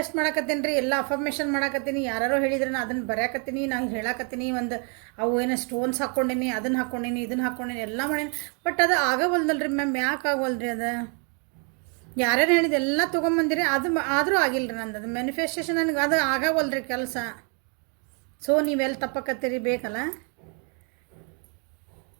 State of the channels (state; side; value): quieter; left; 37.9 dB